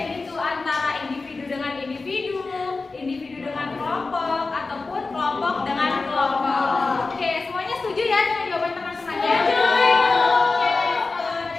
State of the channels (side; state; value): right; quieter; 3.8 dB